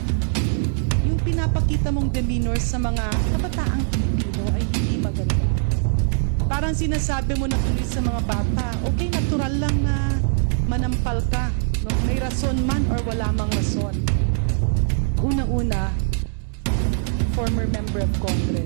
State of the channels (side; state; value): left; silent; digital silence